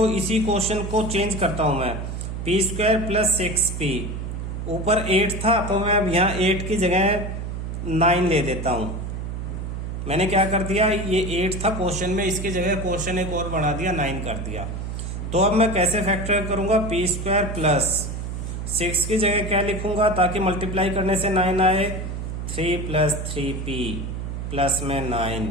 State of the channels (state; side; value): noise; right; hum, 5 dB below the sound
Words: इसी क्वेश्चन को चेंज करता हूं मैं, p² + 6p, ऊपर 8 था तो मैं अब यहाँ 8 की जगह 9 ले देता हूं। मैंने क्या कर दिया, ये 8 था क्वेश्चन में, इसकी जगह क्वेश्चन एक और बढ़ा दिया, 9 कर दिया। तो अब मैं कैसे फैक्टर करूंगा, p² + 6 की जगह क्या लिखूंगा ताकि मल्टीप्लाई करने से 9 आए, 3 + 3p प्लस में 9,